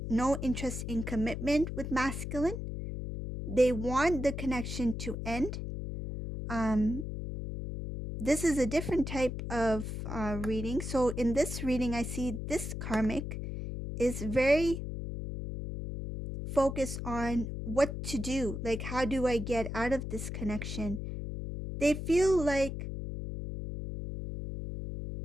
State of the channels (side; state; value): left; noise; hum, 5 dB below the sound